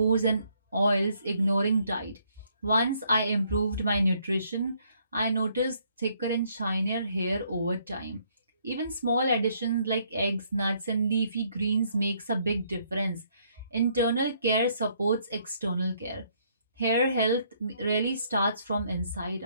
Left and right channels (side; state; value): both; inverted; correlation -0.68